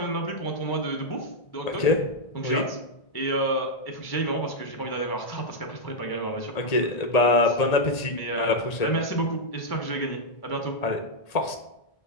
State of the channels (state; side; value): late; right; 1.8 ms